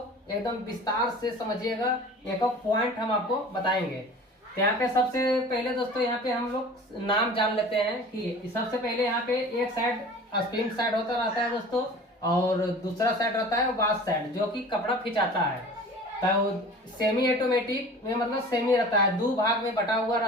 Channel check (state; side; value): normal; both; correlation 0.41